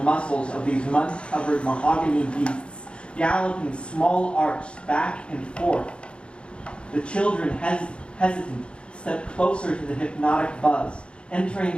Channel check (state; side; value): late; right; 0.057 ms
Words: muscles of these mud-covered mahogany beasts, galloping small arcs back and forth. The children, hesitant, step closer to the hypnotic buzz, entering